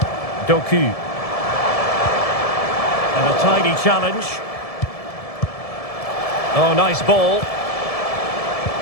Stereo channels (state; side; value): late; right; 1.7 ms